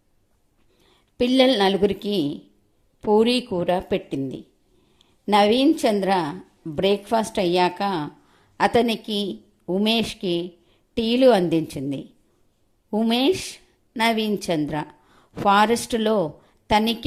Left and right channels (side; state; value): both; identical; correlation 1.00